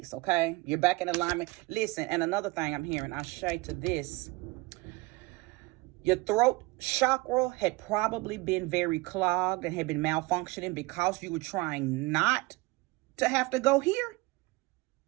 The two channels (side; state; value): left; quieter; 23.0 dB